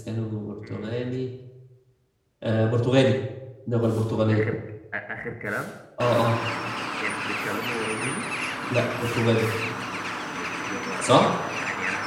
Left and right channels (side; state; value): both; identical; correlation 1.00